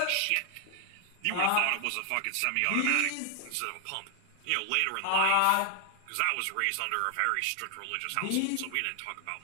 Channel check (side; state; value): both; different; correlation 0.00